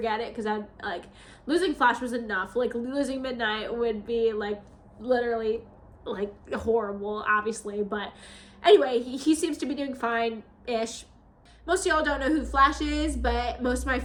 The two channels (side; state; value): both; identical; correlation 1.00